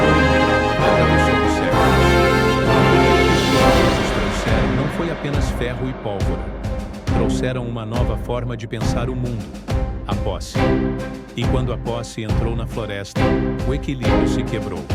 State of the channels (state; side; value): identical; both; correlation 1.00